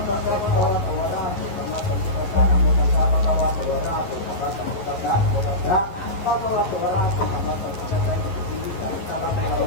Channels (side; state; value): right; late; 10 ms